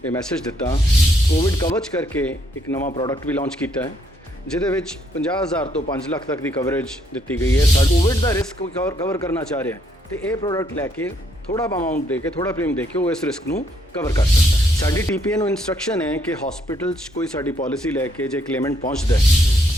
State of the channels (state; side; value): normal; both; correlation 0.71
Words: ਇਹ ਮੈਸੇਜ ਦਿੱਤਾ। ਕੋਵਿਡ ਕਵਚ ਕਰਕੇ ਇੱਕ ਨਵਾਂ ਪ੍ਰੋਡਕਟ ਵੀ ਲਾਂਚ ਕੀਤਾ ਹੈ ਜਿਹਦੇ ਵਿੱਚ 50,000 ਤੋਂ 5 ਲੱਖ ਤੱਕ ਦੀ ਕਵਰੇਜ ਦਿੱਤੀ ਗਈ ਹੈ। ਕੋਵਿਡ ਦਾ ਰਿਸਕ ਕਵਰ ਕਰਨਾ ਚਾਹ ਰਿਹਾ ਤੇ ਇਹ ਪ੍ਰੋਡਕਟ ਲੈ ਕੇ ਥੋੜਾ ਅਮਾਉਂਟ ਦੇ ਕੇ, ਥੋੜਾ ਪ੍ਰੀਮੀਅਮ ਦੇ ਕੇ ਉਹ ਇਸ ਰਿਸਕ ਨੂੰ ਕਵਰ ਕਰ ਸਕਦਾ ਹੈ। ਸਾਡੀ ਟੀਪੀਏ ਨੂੰ ਇਨਸਟਰਕਸ਼ਨ ਹੈ ਕਿ ਹਸਪੀਟਲ 'ਚ ਕੋਈ ਸਾਡੀ ਪਾਲਿਸੀ ਲੈ ਕੇ ਜੇ ਕਲੇਮੈਂਟ ਪਹੁੰਚਦਾ ਹੈ